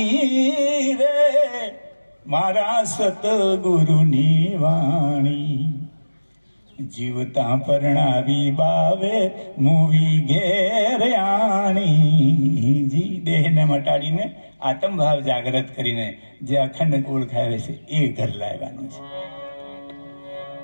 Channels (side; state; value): both; inverted; correlation -1.00